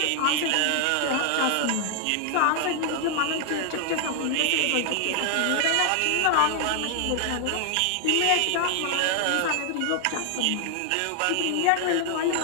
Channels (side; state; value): both; different; correlation 0.00